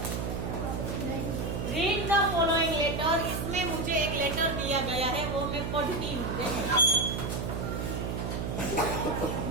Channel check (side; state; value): right; noise; hum, 3 dB below the sound